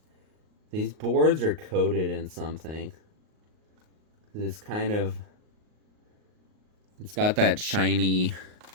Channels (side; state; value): left; late; 38 ms